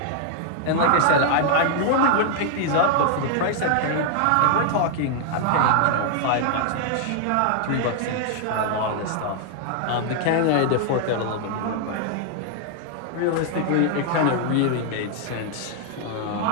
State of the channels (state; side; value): different; both; correlation 0.00